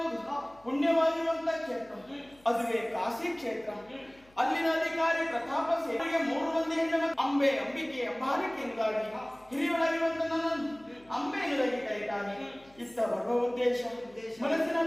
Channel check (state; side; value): noise; left; hum, 29 dB below the sound